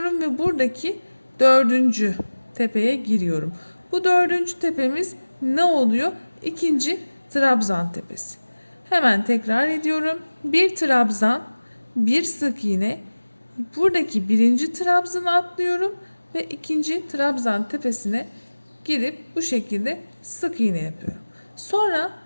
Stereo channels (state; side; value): inverted; both; correlation -1.00